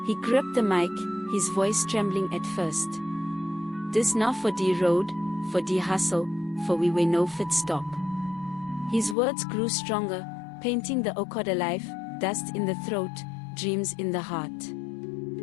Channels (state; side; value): drops out; right; at 9.2 s